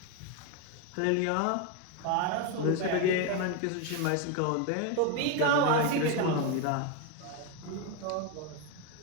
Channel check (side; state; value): both; different; correlation 0.02